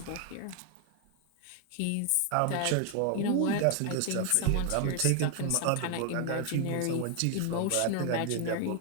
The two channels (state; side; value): different; both; correlation 0.00